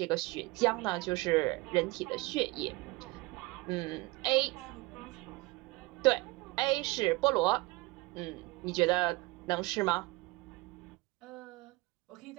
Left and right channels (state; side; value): quieter; left; 23.1 dB